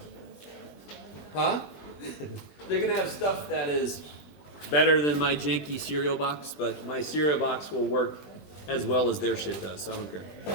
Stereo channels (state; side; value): late; right; 20 ms